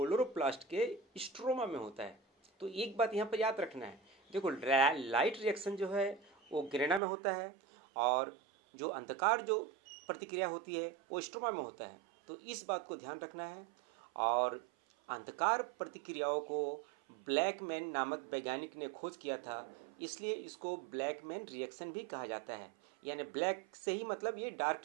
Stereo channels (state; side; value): drops out; left; at 7.0 s